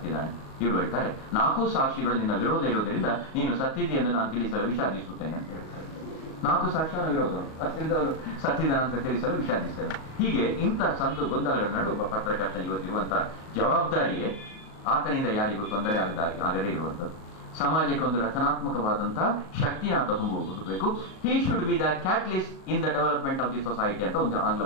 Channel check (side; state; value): right; late; 37 ms